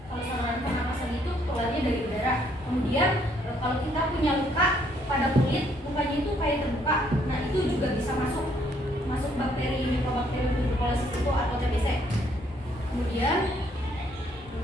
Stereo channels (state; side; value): normal; both; correlation 0.67